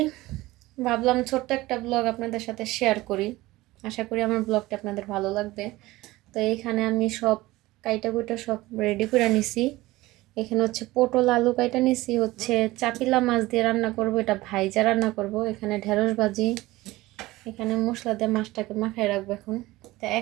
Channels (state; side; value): quieter; left; 18.8 dB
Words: ভাবলাম ছোট্ট একটা ব্লগ আপনাদের সাথে শেয়ার করি। আশা করি আমার ব্লগটা আপনাদের ভালো লাগবে। তো এইখানে আমি সব কাইটা কুইটা সব রেডি করে নিছি। এখানে হচ্ছে পটল আলু কাইটা নিছি, হচ্ছে চাপিলা মাছ দিয়ে রান্না করব, এটা ভাইজা রান্না করব। এখানে ঢেঁড়স ভাজি, এখানে মশলা দিয়ে মাছটাকে মাখায় রাখবো এখন। তা